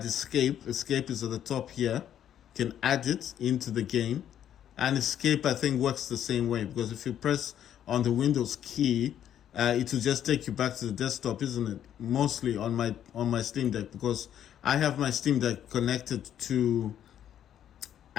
escape. Escape is at the top here. You can add it into the game. And escape, I think, works the same way. Because if you press on the Windows key, it will just take you back to the desktop, isn't it? Mostly on my Steam Deck. Because I have my Steam Deck connected to...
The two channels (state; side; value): quieter; right; 10.3 dB